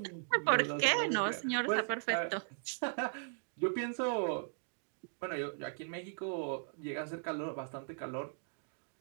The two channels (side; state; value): left; silent; digital silence